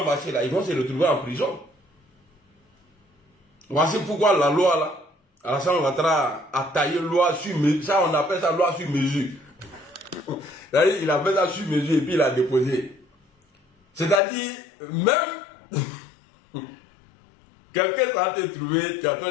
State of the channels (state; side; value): drops out; right; at 14.2 s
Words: marcher là, ils vont se retrouver en prison. Voici pourquoi la loi là, Alassane Ouattara a taillé loi sur mesure. Ça, on appelle ça loi sur mesure. Il a fait ça sur mesure et puis il a déposé. C'est-à-dire, même quelqu'un s'en te trouvé, tu es en train